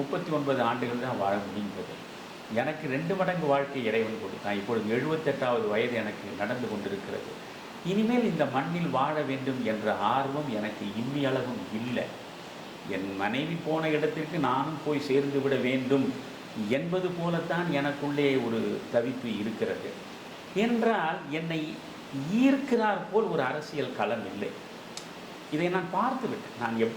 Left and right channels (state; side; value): identical; both; correlation 1.00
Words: 39 ஆண்டுகள் தான் வாழ முடிந்தது. எனக்கு 2 மடங்கு வாழ்க்கை இறைவன் கொடுத்தான். இப்பொழுது 78வது வயது எனக்கு நடந்து கொண்டிருக்கிறது. இனிமேல் இந்த மண்ணில் வாழ வேண்டும் என்ற ஆர்வம் எனக்கு இம்மியளவும் இல்லை. என் மனைவி போன இடத்திற்கு நானும் போய் சேர்ந்து விட வேண்டும் என்பது போலத்தான் எனக்குள்ளே ஒரு தவிப்பு இருக்கிறது. என்றால் என்னை ஈர்க்கிறார் போல் ஒரு அரசியல் களம் இல்லை. இதை நான் பார்த்து விட்டேன். நான்